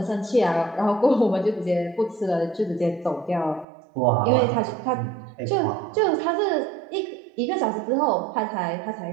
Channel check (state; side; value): drops out; left; at 3.7 s